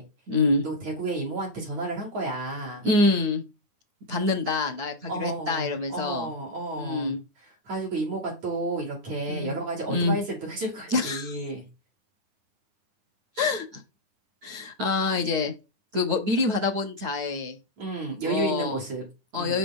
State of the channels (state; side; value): late; left; 9.0 ms